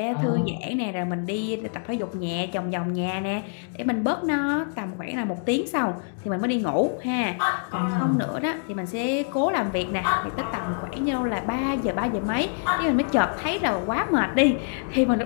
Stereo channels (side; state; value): right; silent; digital silence